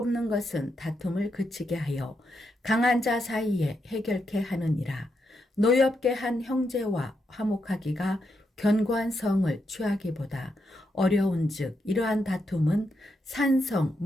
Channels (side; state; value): both; normal; correlation 0.82